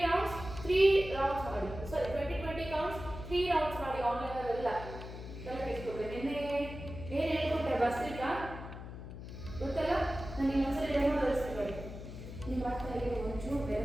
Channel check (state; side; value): noise; left; hum, 11 dB below the sound